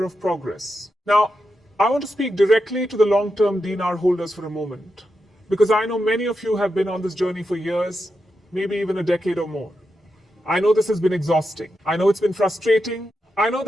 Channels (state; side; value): normal; both; correlation 0.87